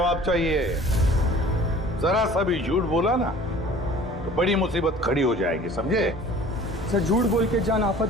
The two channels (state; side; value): normal; both; correlation 0.47